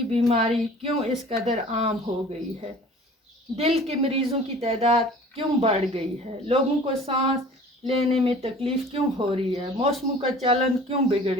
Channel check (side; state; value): both; normal; correlation 0.46